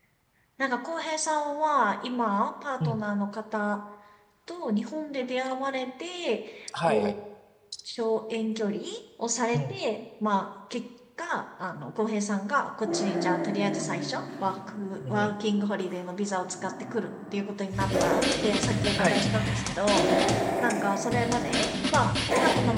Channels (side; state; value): both; identical; correlation 1.00